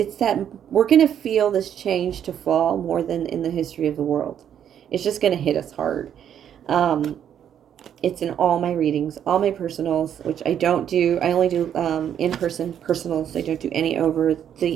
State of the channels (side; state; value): left; quieter; 9.4 dB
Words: that we're going to feel this change to fall more than in the history of the world. It's just going to hit us hard. It's in all my readings, all my personals, which I don't do. I only do in-person personals. I don't do any over